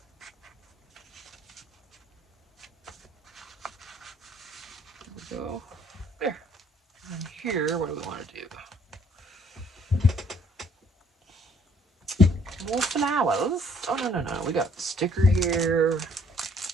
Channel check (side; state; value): both; normal; correlation 0.62